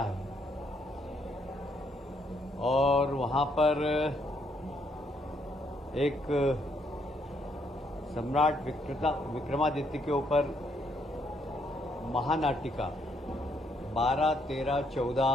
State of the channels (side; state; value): both; normal; correlation 0.72